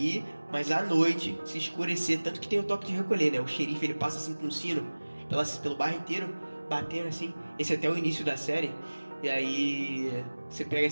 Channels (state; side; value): inverted; both; correlation -1.00